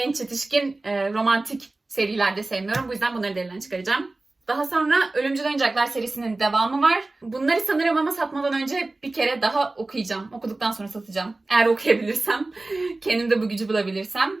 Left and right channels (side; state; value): left; quieter; 3.1 dB